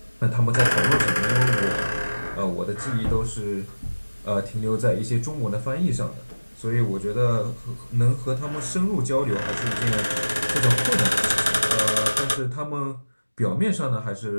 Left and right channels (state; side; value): inverted; both; correlation -1.00